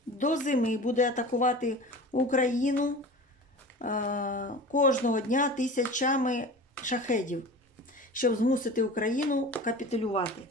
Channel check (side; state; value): both; normal; correlation 0.36